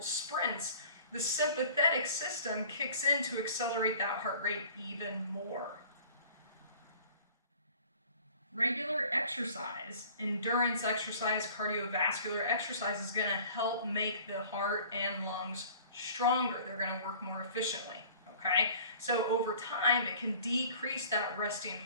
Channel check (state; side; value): inverted; both; correlation -0.48